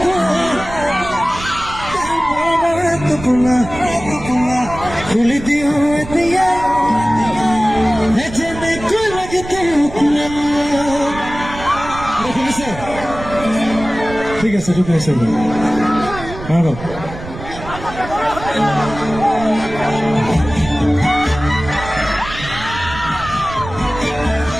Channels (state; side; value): noise; right; rumble, 12 dB below the sound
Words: টোপোলা খুলি দিওঁ এতিয়া যেনেকৈ লাগে শুনিছে? ঠিক আছে ঠিক আছে